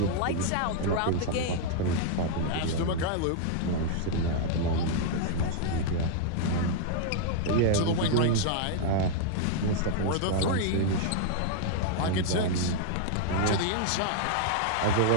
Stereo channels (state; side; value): different; both; correlation 0.00